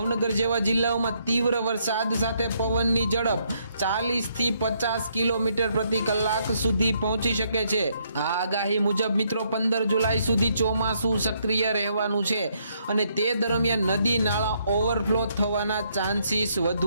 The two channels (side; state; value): both; inverted; correlation -0.73